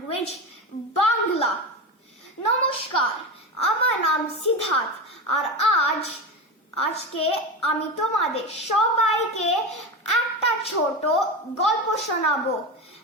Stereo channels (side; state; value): both; normal; correlation 0.22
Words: Bangla. নমস্কার, আমার নাম সিদ্ধার্থ, আর আজকে আমি তোমাদের সবাইকে একটা ছোট গল্প শোনাবো